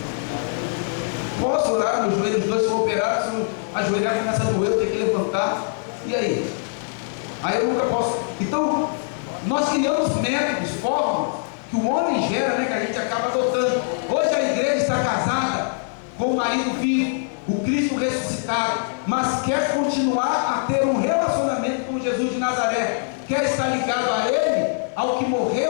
Posso orar, meus joelhos dois são operados, se eu ajoelhar começa a doer, eu tenho que levantar, e aí? Aí eu nunca posso. Então, nós criamos métodos, fórmulas, que o homem gera, né, que a gente acaba adotando. Hoje a igreja está casada com o marido vivo, o Cristo ressuscitado, mas quer continuar a ter um relacionamento com Jesus de Nazaré, quer estar ligado a Ele, ao que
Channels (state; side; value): silent; right; digital silence